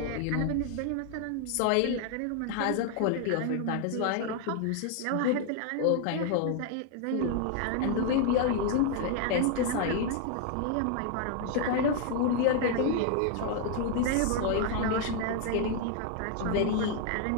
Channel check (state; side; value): different; both; correlation 0.00